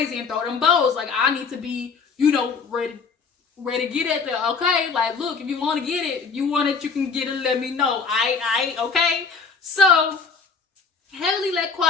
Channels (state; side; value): quieter; right; 5.1 dB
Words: and throw them bows. I need to be, ready to get at there, okay? Look, if you want to get it, if you want it, you can get it, let me know. I, okay? So, Heavenly let